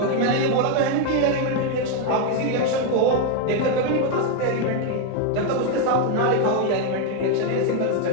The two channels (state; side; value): different; both; correlation 0.01